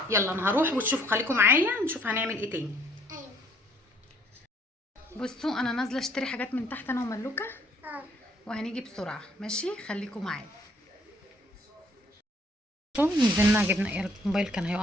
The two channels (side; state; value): both; normal; correlation 0.63